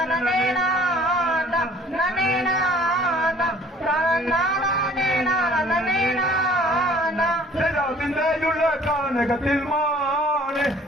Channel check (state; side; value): normal; both; correlation 0.53